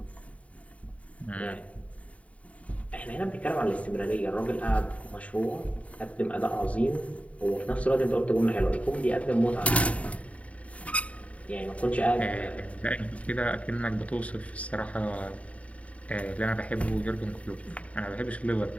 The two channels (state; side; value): late; right; 0.066 ms